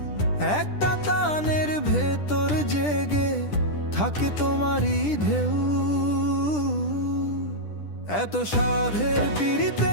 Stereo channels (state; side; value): late; right; 10 ms